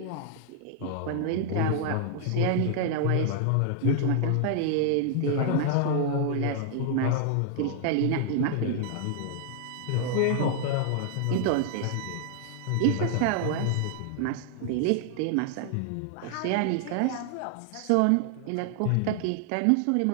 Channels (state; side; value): different; both; correlation -0.01